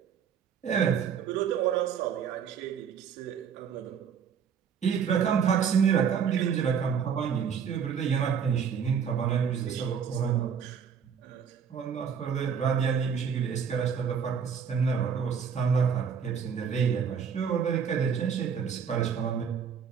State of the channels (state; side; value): quieter; left; 7.1 dB